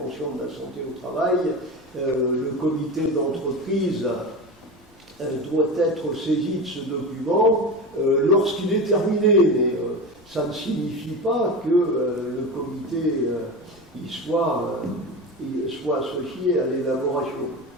de la santé au travail, le comité d'entreprise doit être saisi de ce document lorsqu'il est terminé, mais ça ne signifie pas que le comité soit associé à l'élaboration.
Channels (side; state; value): left; noise; rumble, 29 dB below the sound